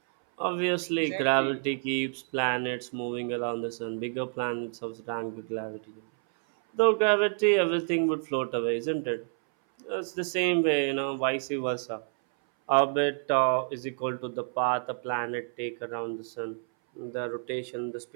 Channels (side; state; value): left; silent; 59 dB below the other